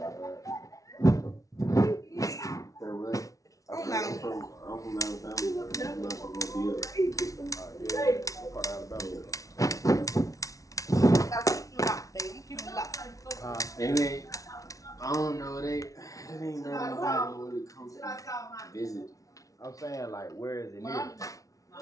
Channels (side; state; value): right; late; 0.17 ms